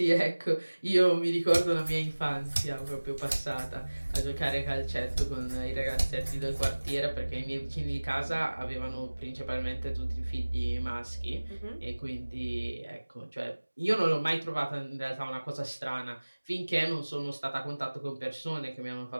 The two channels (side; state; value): both; inverted; correlation -1.00